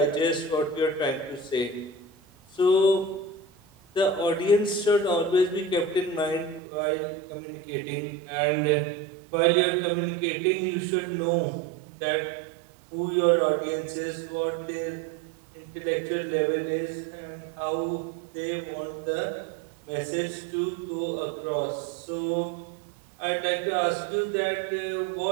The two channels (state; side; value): drops out; left; at 6.6 s